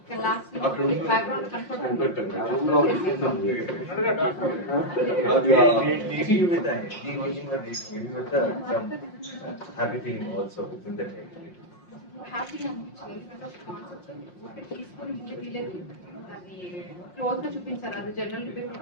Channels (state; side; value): late; right; 5.6 ms